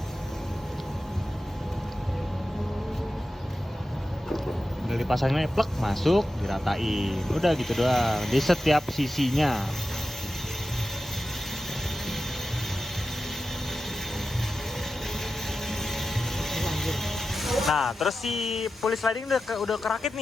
Udah dipasangnya plek, masuk, diratain. Udah gitu doang di setiap sisinya. Nah, terus si pulis sliding udah kerakit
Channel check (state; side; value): normal; both; correlation 0.92